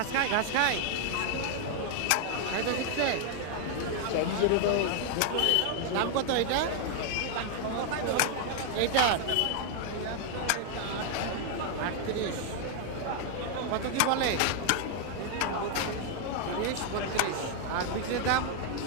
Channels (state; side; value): different; both; correlation 0.00